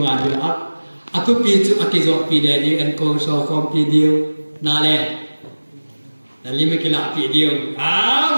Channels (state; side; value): inverted; both; correlation -1.00